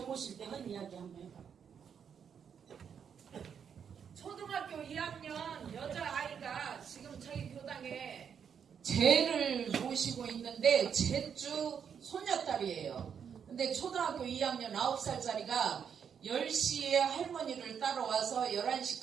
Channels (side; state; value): left; quieter; 7.5 dB